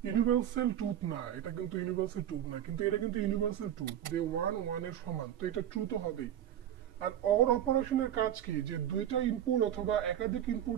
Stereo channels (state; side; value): quieter; left; 10.7 dB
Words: ইউনিভার্সাল ট্রুথ না, এটা কিন্তু ইউনিভার্সাল ট্রুথ না, কিন্তু এটা কিন্তু ইউনিভার্সাল ট্রুথ যে 1 এর সমান, তো এটা ট্রু তো হবেই। আর অর অপারেশনের কাজ কি, যে দুইটা ইনপুট অথবা একাধিক